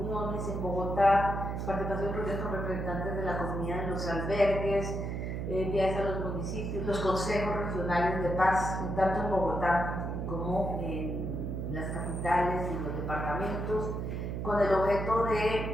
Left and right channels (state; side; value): noise; right; hum, 3 dB below the sound